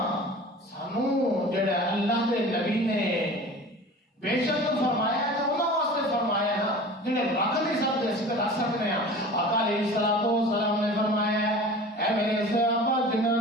سانو جڑا اللہ دے نبی نے بے شک فرمایا ہے تو انہاں واسطے فرمایا ہے جڑے رکھ نہیں سکتے اس پہ رکھ سکتے ہیں آقا علیہ السلام نے فرمایا ہے اے میرے صحابہ جنہوں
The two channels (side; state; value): both; normal; correlation 0.39